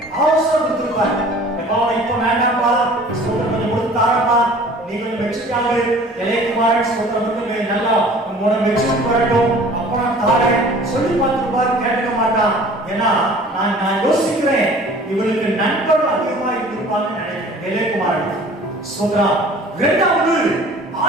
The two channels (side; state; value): both; normal; correlation 0.48